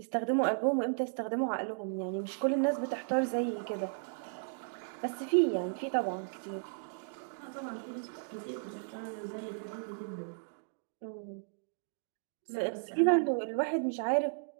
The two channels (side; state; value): left; silent; digital silence